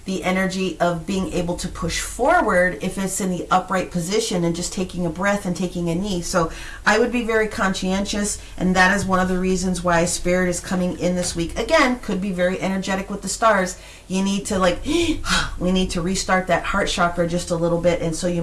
the energy of being able to push forward if it's in the upright position and just taking a breath and taking a knee. So I would be very conscientious, and that is one of the reasons why Spirit is coming in this week. Again, could be very energetic with the stars. You need to we need to restart that heart chakra just a little bit, and so you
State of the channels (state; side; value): identical; both; correlation 1.00